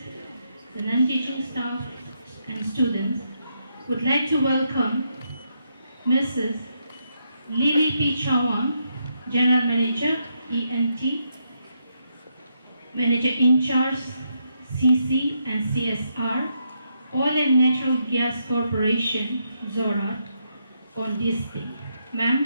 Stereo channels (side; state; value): both; inverted; correlation -0.80